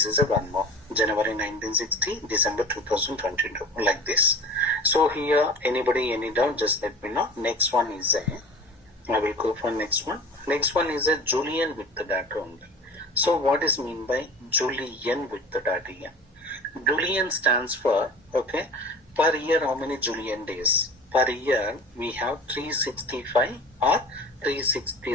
is a one more. January 1960, December 2022, like this. So here, anybody, any doubt, just let me know. Next one is a, I will go for next one. Next one is a Julian with the data only. So what is mean by Julian with the data here? Julian stands for, okay, per year how many Julian days? Per year we have 365 or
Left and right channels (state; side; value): normal; both; correlation 0.38